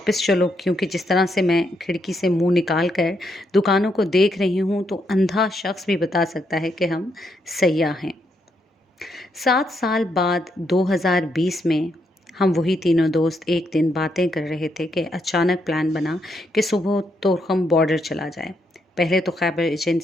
چلو، کیونکہ جس طرح سے میں کھڑکی سے منہ نکال کر دکانوں کو دیکھ رہی ہوں تو اندھا شخص بھی بتا سکتا ہے کہ ہم سیاح ہیں۔ 7 سال بعد 2020 میں ہم وہی تینوں دوست ایک دن باتیں کر رہے تھے کہ اچانک پلان بنا کہ صبح طورخم بارڈر چلا جائے۔ پہلے تو خیبر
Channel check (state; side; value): normal; both; correlation 0.78